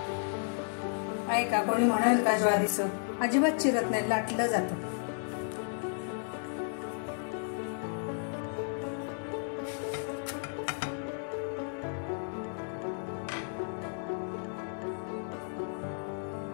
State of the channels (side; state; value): right; silent; digital silence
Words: आहे का कोणी म्हणाल का ज्वारीचं? अजिबात चिरत नाही, लाटलं जातं.